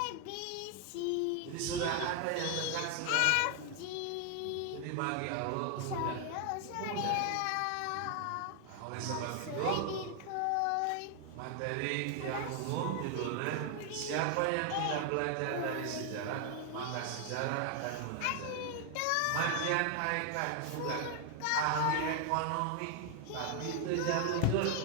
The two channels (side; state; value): both; different; correlation 0.00